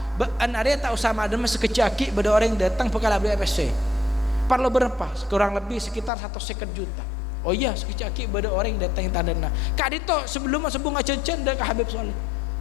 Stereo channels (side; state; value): right; drops out; at 6.1 s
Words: an area tak usah madem sekecaki pada orang yang datang bekal beli FSC perlu berapa kurang lebih sekitar 150 juta oh iya sekecaki pada orang yang datang yang tandana kak dito sebelum sebung acen-cen dah ke Habib Soleh